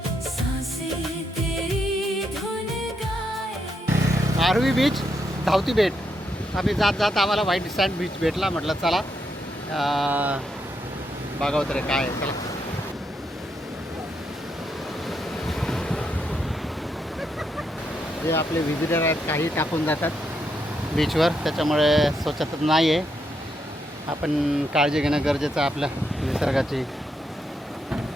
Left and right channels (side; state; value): both; normal; correlation 0.80